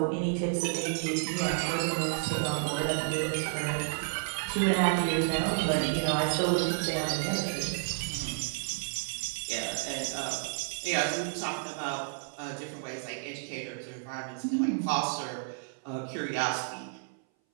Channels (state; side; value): silent; left; 57 dB below the other